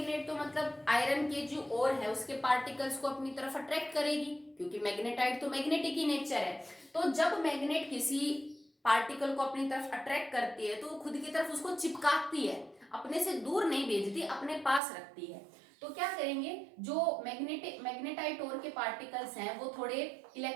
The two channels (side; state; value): left; drops out; at 14.8 s